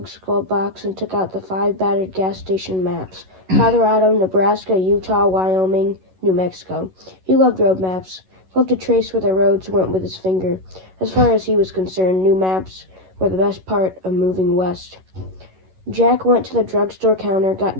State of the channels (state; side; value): late; left; 11 ms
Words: skull box and took out the 5 battered gas station maps. Colorado, Nebraska, Utah, Wyoming, New Mexico. He loved road maps. Loved to trace where the roads went with his finger. As far as he was concerned, new maps were the best part of moving west. Jack went to the drugstore counter, got